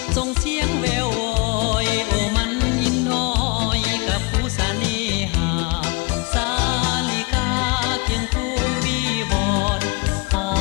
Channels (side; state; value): right; quieter; 28.0 dB